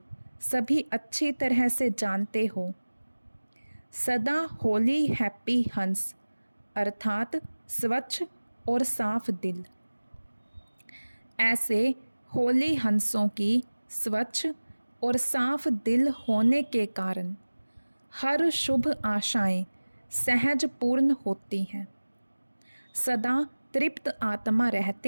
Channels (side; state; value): both; inverted; correlation -1.00